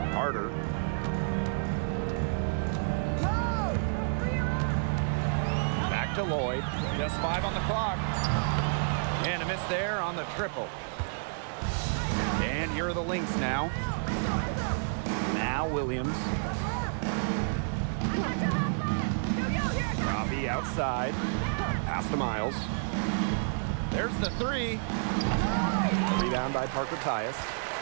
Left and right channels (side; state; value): left; silent; digital silence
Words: Carter. Back to Lloyd. Just 5 on the clock. And a miss there on the triple. And here are the Lynx now. Now Williams. Robbie outside. Pass to Miles. There's the 3. A rebound by Parker Tyus.